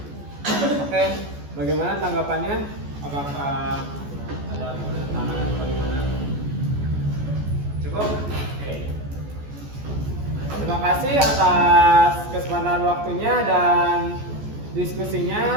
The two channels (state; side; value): late; left; 14 ms